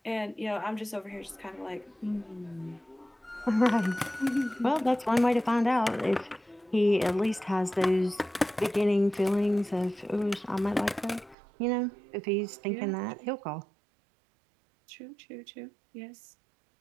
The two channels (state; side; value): drops out; left; at 11.4 s